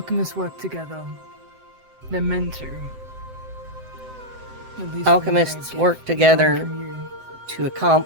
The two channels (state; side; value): late; left; 7.8 ms